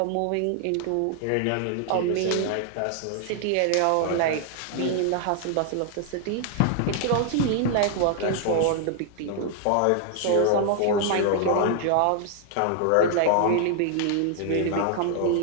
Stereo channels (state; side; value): different; both; correlation 0.00